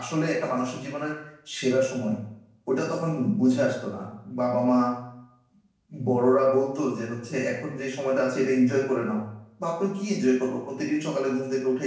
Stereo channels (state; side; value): identical; both; correlation 1.00